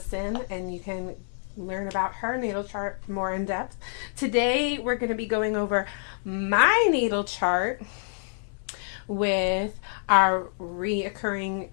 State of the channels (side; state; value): right; silent; digital silence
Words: and you can learn about her natal chart more in depth. Today we're going to be going over my natal chart with our reoccurring